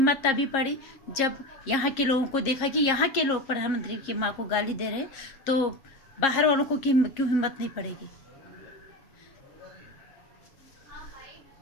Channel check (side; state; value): right; late; 7.4 ms